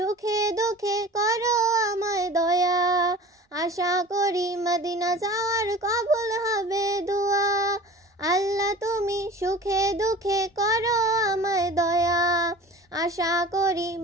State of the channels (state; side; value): normal; both; correlation 0.40